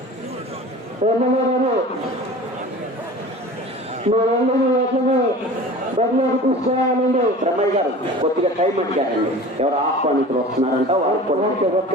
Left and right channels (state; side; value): normal; both; correlation 0.39